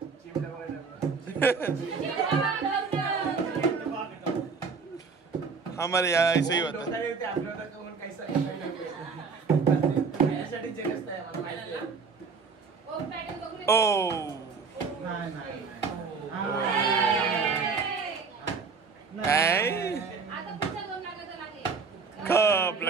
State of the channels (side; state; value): left; quieter; 5.0 dB